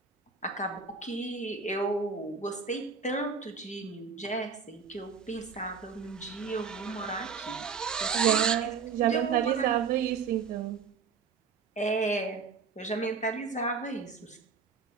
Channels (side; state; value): left; quieter; 5.6 dB